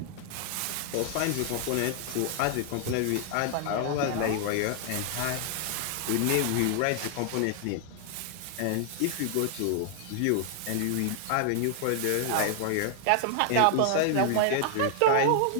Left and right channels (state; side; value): different; both; correlation 0.00